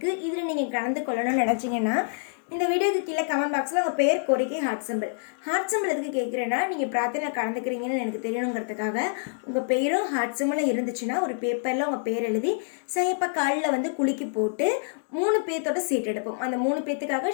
இதில் நீங்கள் கலந்து கொள்ளணும்னு நினச்சிங்கன்னா இந்த வீடியோக்கு கீழே கமெண்ட் பாக்ஸில் உங்கள் பேர், கோரிக்கை, ஹார்ட் சிம்பிள் எதுக்கு கேட்குறேன்னா, நீங்கள் பிரார்த்தனையில் கலந்துக்கிறீங்கன்னு எனக்கு தெரியணுங்கிறதுக்காக உங்கள் பேரும் ஹார்ட் சிம்பிளும் இருந்துச்சுன்னா ஒரு பேப்பரில் உங்கள் பேர் எழுதி சாயப்பா காலில் குலுக்கி போட்டு 3 பேர்த்தோட சீட் எடுப்போம். அந்த 3 பேர்த்துக்காக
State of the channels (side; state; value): right; silent; digital silence